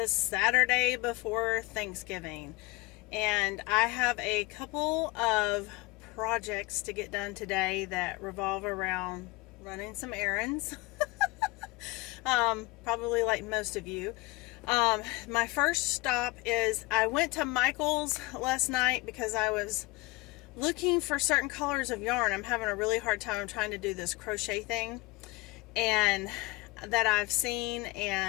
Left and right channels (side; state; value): right; quieter; 21.9 dB